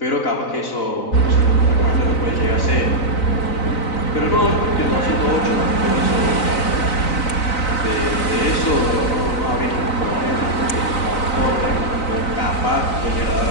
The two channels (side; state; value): right; late; 3.9 ms